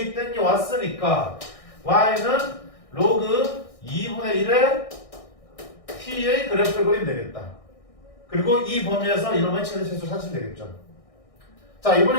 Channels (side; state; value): right; late; 1.6 ms